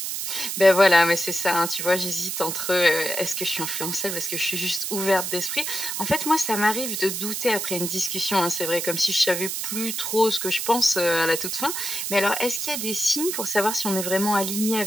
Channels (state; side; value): noise; right; hiss, 3 dB below the sound